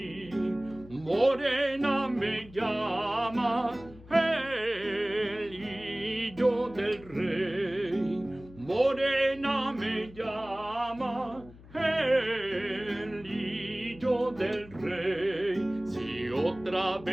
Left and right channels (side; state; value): left; noise; hum, 20 dB below the sound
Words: Morena me llama el hijo del rey. Morena me llama el hijo del rey. Si otra